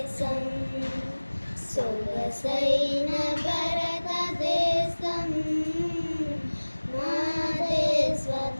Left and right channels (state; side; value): inverted; both; correlation -1.00